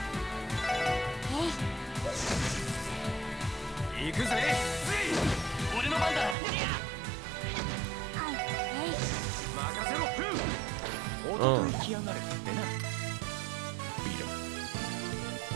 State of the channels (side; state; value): left; drops out; at 6.4 s